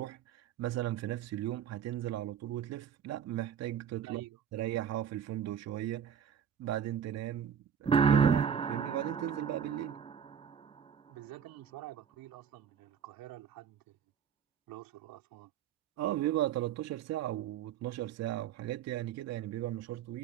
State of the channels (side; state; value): left; quieter; 8.3 dB